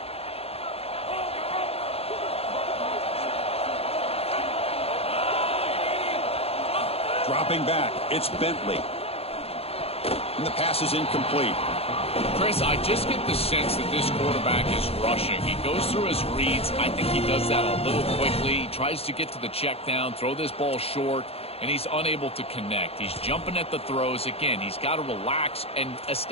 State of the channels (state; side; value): late; right; 0.29 ms